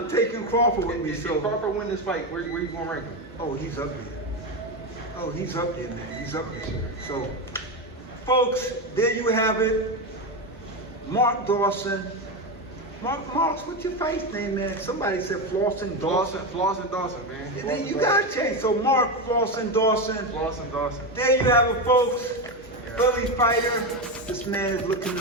taking Crawford with me. If So, Crawford win this fight, where you gonna rank him? oh, he's up there. Oh, he's up there, man. He's up there. So, folks, there you have it. Mark Dawson. Mark's, what's your face name, man? Somebody said Flawson Dawson. Dawson, man. And then you gotta change. So Mark Flawson Dawson. Flawson Dawson. There you have it, folks. Philly fighter. This man is looking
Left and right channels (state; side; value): normal; both; correlation 0.14